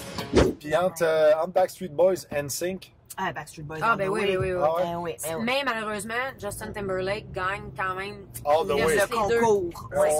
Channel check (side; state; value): both; identical; correlation 1.00